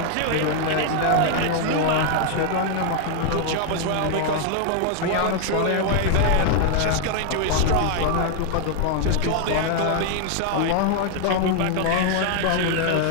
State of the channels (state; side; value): different; both; correlation 0.00